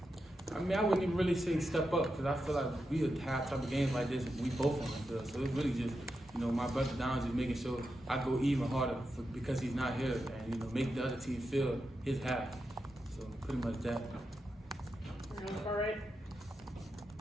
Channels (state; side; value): normal; both; correlation 0.87